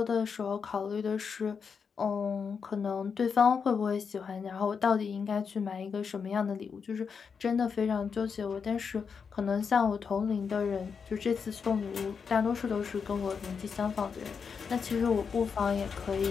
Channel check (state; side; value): quieter; right; 6.0 dB